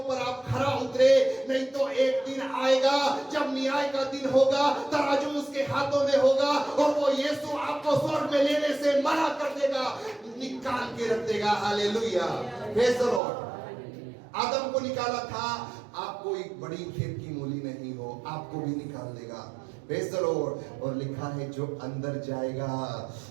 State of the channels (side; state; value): left; drops out; at 13.2 s